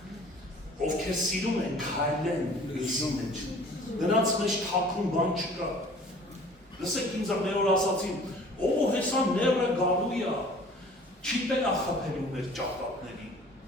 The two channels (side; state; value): both; normal; correlation 0.49